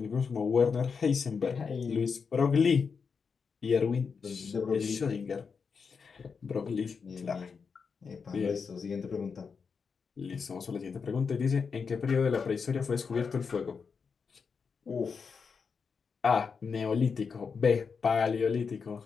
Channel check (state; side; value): quieter; right; 5.6 dB